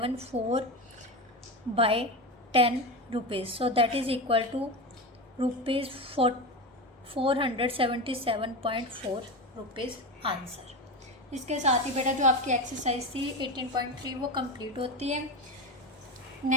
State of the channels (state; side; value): normal; both; correlation 0.20